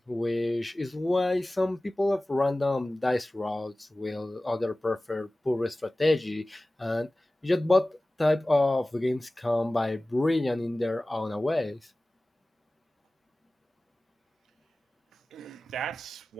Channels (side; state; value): both; normal; correlation 0.97